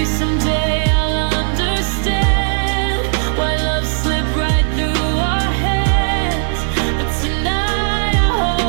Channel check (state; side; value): silent; left; 68 dB below the other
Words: Someday I'll understand why love slipped right through our hands. But tonight I